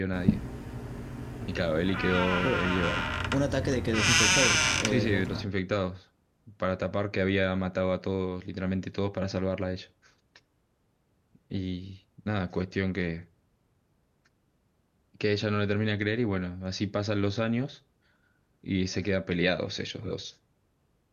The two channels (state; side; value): identical; both; correlation 1.00